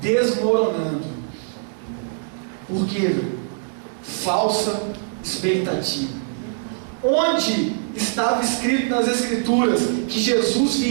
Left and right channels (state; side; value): silent; left; 63 dB below the other